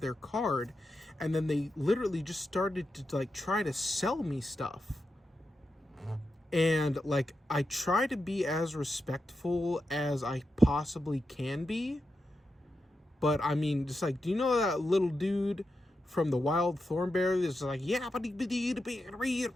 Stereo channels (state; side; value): normal; both; correlation 0.88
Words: card, and then they literally just started to like try to sell me stuff. And like I try to be as respectful as I possibly can be, but I mean, just like, do you know that little dude from the Wild Thornberry that's like, yeah,